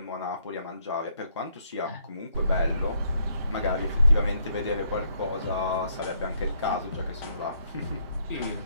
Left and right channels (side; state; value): both; inverted; correlation -0.71